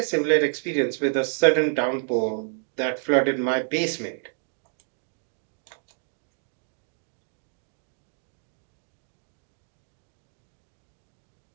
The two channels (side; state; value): left; silent; 59 dB below the other